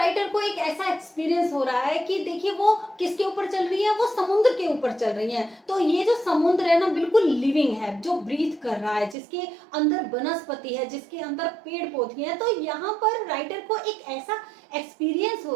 को एक ऐसा एक्सपीरियंस हो रहा है कि देखिए वो किसके ऊपर चल रही है, वो समुद्र के ऊपर चल रही है। तो ये जो समुद्र है ना बिल्कुल लिविंग है, जो ब्रीथ कर रहा है, जिसके अंदर वनस्पति है, जिसके अंदर पेड़ पौधे हैं। तो यहाँ पर राइटर को एक ऐसा एक्सपीरियंस हो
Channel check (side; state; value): left; drops out; at 9.2 s